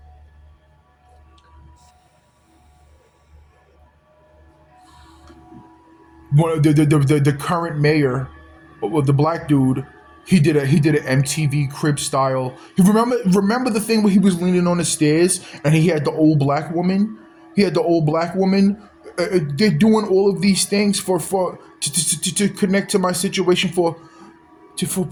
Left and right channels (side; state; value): both; identical; correlation 1.00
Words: One the current mayor, well, the black dude, he did an MTV Crib style. You remember the thing where he was leaning on the stairs and he had the old black woman. He had the old black woman. They're doing all of these things to connect to my situation for